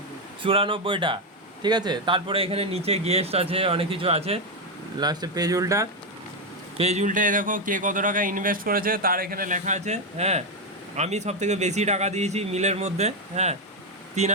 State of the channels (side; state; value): both; normal; correlation 0.05